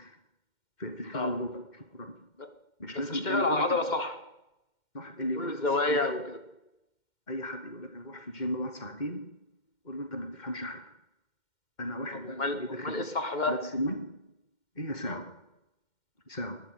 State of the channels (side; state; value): right; late; 2.1 ms